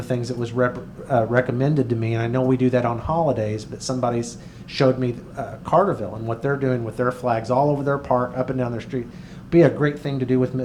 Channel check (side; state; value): both; identical; correlation 1.00